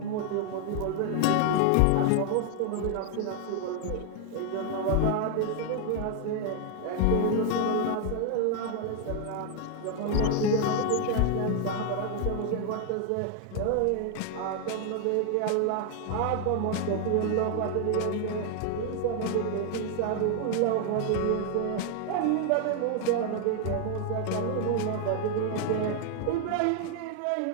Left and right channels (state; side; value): different; both; correlation 0.00